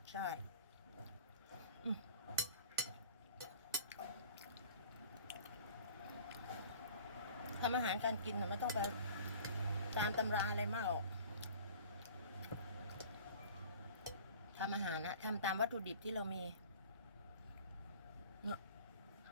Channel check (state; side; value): inverted; both; correlation -0.45